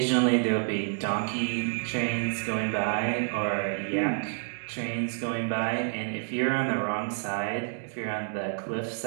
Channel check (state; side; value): silent; left; digital silence